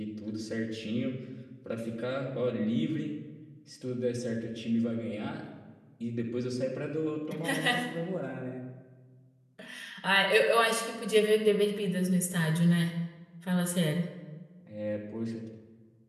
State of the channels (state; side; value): identical; both; correlation 1.00